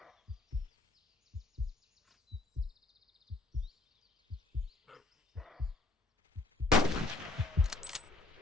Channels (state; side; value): quieter; right; 3.1 dB